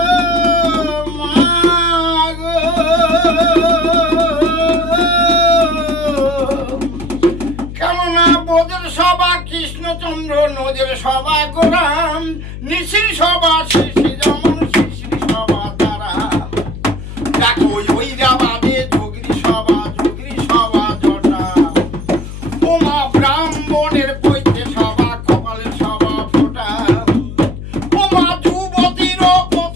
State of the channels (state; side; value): noise; left; hum, 10 dB below the sound